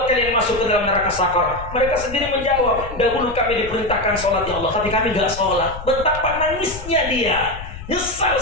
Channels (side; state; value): left; noise; rumble, 12 dB below the sound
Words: kalian masuk ke dalam neraka sakar? Mereka sendiri menjawab, dahulu kami diperintahkan sholat ya Allah, tapi kami gak sholat. Betapa nangisnya dia. Nyesal